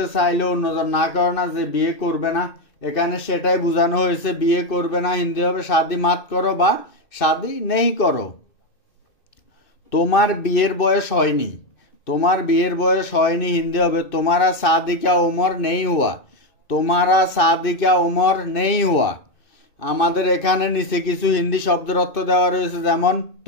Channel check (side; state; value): right; late; 2.5 ms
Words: চাইলে অন্যজন না করে না, যে বিয়ে করবে না, এখানে সেটাই বোঝানো হয়েছে। বিয়ে করবে না হিন্দি হবে শাদি মাত করো বা শাদি নেই করো। তোমার বিয়ের বয়স হয়নি, তোমার বিয়ের বয়স হয়নি হিন্দি হবে তোমারা शादी का उम्र नहीं हुआ। তোমারা शादी का उम्र नहीं हुआ। আমাদের এখানে নিচে কিছু হিন্দি শব্দের অর্থ দেওয়া রয়েছে, যেমন